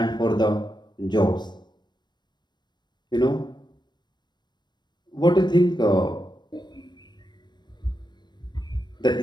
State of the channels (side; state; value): right; late; 0.21 ms